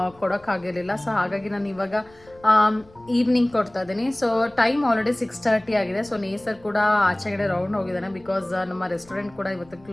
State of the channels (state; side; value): noise; left; rumble, 27 dB below the sound